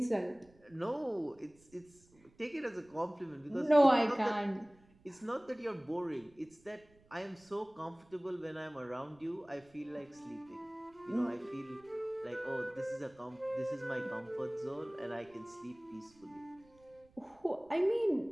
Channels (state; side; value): noise; right; rumble, 29 dB below the sound